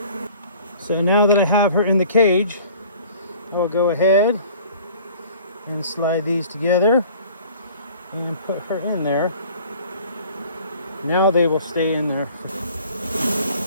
So now that I have her in the cage, I will go ahead and slide these together and put her in there. Now they will stay in there.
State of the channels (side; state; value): both; inverted; correlation -0.49